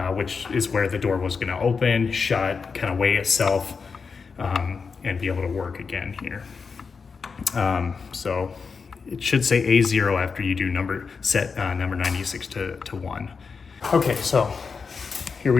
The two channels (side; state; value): right; quieter; 5.3 dB